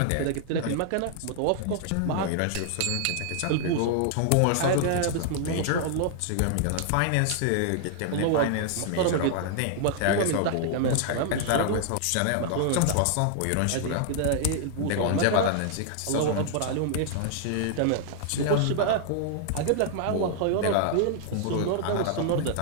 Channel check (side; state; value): both; different; correlation -0.01